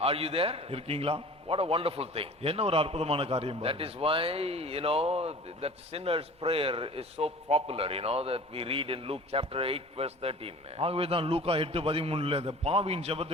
Are you there? இருக்கீங்களா? What a wonderful thing. என்ன ஒரு அற்புதமான காரியம் That பாருங்க. is why, that sinner's prayer is so popular, that we read in Luke chapter 8 verse 13. ஆகவே தான் லூக்கா 8:13 அந்த பாவியின்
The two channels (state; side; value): normal; both; correlation 0.42